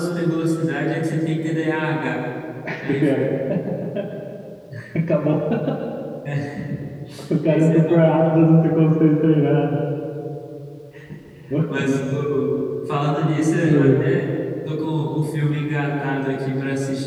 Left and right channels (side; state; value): both; identical; correlation 1.00